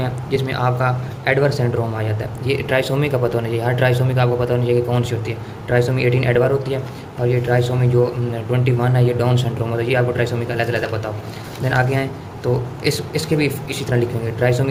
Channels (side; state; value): both; identical; correlation 1.00